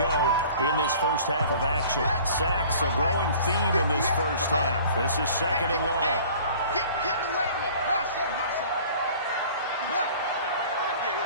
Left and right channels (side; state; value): both; inverted; correlation -0.48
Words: in this first half of action. Sacks, a growing theme in this first half. This is 2nd and long. Get away with it. Hustle. Yeah.